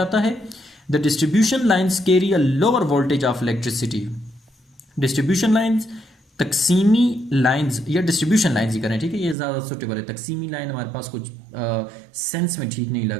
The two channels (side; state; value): left; drops out; at 9.3 s